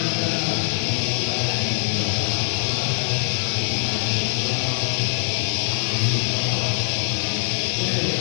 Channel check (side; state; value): right; silent; digital silence